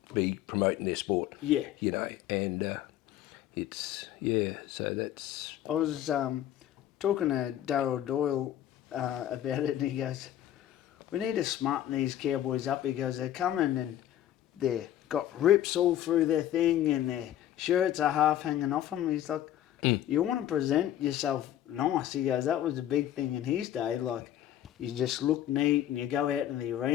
be promoting their sport. And it's so that's. I was talking to Darryl Doyle about it, and he goes, "We need to smarten these cowboys up." He goes, "They're coming and they've got rips all through their thing, and their shirts are half hanging off them." He's like, "You want to present yourself nice." He goes, "That was the big thing in his day. Like, you just look neat, and you go out in the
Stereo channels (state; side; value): quieter; right; 12.0 dB